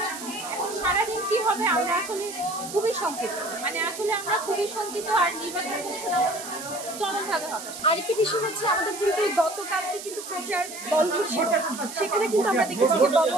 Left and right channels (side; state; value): right; noise; hiss, 11 dB below the sound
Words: এখন সারাদিন কি হবে আমরা আসলে খুবই শঙ্কিত, আসলে আমরা খুবই শঙ্কিত। আর নির্বাচন কমিশন চরমভাবে হতাশ। আরেকটি বিষয় হচ্ছে আমাদের কিন্তু গতকালকে কিন্তু প্রচার বন্ধ ছিল, সেখানে কিন্তু আমরা দেখেছি যে